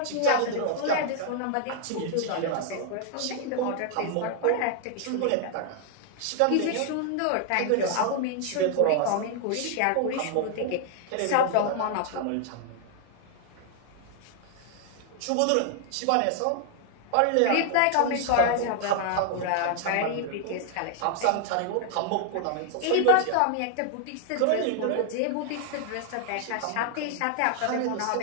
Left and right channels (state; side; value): different; both; correlation 0.00